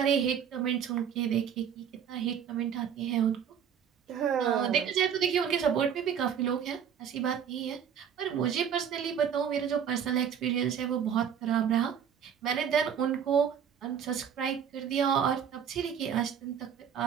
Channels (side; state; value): left; quieter; 8.2 dB